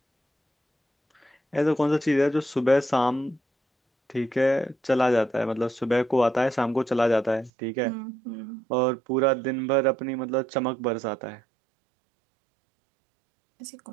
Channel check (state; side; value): drops out; left; at 7.5 s